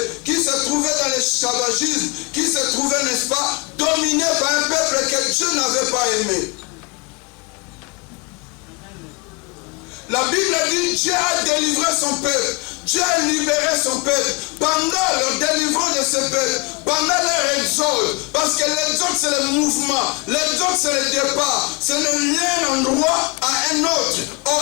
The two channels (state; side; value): quieter; right; 28.8 dB